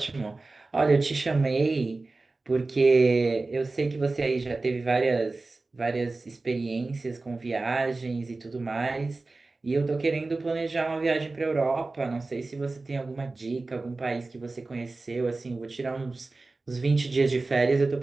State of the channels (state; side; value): quieter; left; 3.4 dB